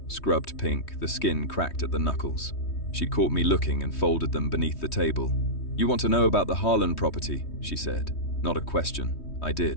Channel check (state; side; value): late; right; 3.2 ms